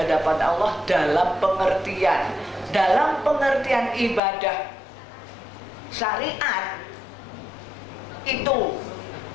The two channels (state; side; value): drops out; right; at 4.2 s